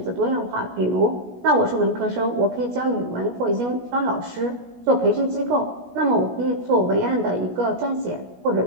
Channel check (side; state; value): left; late; 17 ms